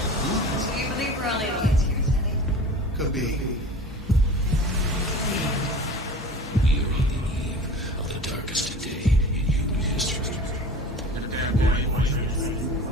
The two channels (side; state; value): both; normal; correlation 0.38